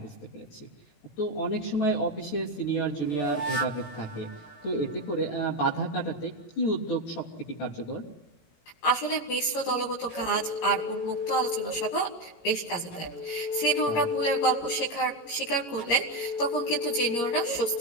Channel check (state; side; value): late; right; 18 ms